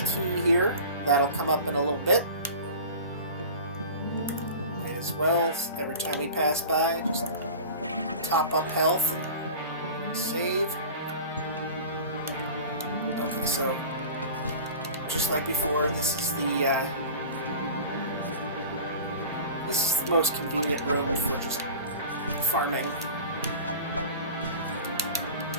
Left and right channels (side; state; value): both; inverted; correlation -0.37